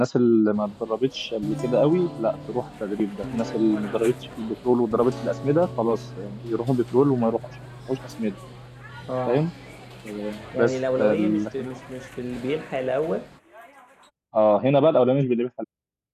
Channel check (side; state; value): both; identical; correlation 1.00